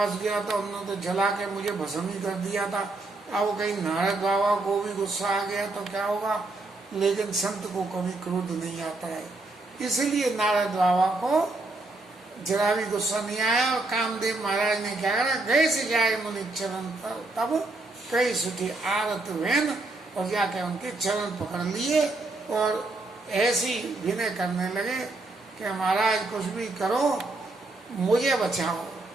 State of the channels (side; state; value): left; quieter; 3.1 dB